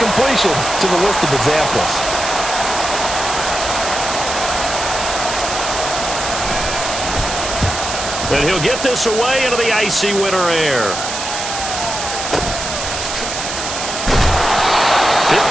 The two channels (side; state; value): right; noise; hiss, 5 dB below the sound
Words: to the list of examples. And he'll get this away into the icy winter air.